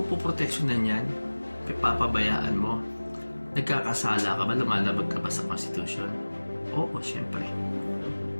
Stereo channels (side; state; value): both; inverted; correlation -1.00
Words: po proteksyonan yan, papabayaan mo, nagkakasala ka ba, lumalabag ka ba sa Constitution? Oo, syempre.